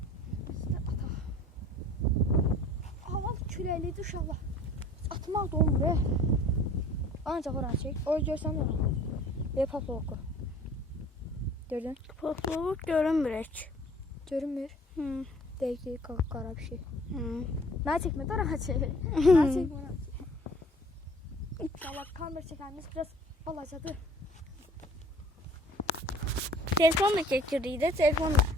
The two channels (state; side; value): normal; both; correlation 0.51